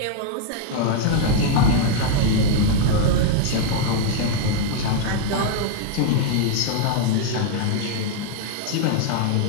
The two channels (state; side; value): different; both; correlation 0.00